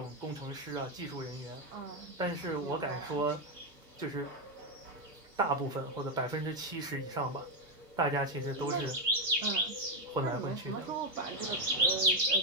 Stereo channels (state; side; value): normal; both; correlation 0.05